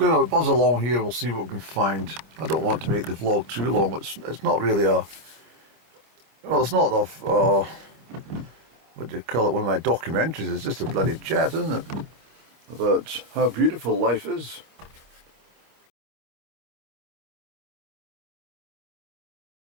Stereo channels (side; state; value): left; late; 26 ms